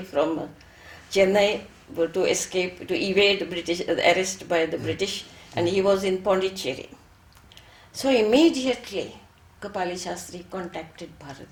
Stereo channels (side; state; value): both; identical; correlation 1.00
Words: from Chennai to escape, to evade British arrest by the British, and he was in Pondicherry. So immediately Kapali Shastri contacted